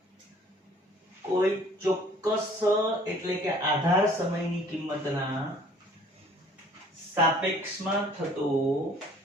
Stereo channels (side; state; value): both; normal; correlation 0.54